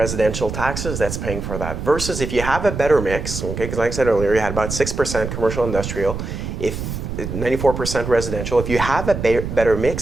taxes that's paying for that. Versus if you have a better mix, okay, because like I said earlier, you had about 6% commercial industrial, if 94% residential. If you have a better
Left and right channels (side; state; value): right; noise; rumble, 6 dB below the sound